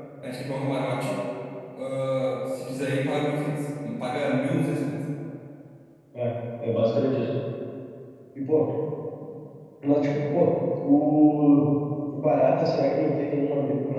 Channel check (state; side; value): identical; both; correlation 1.00